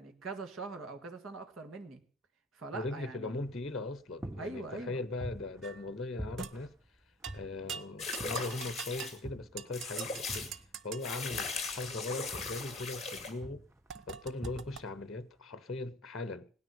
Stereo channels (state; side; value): normal; both; correlation 0.45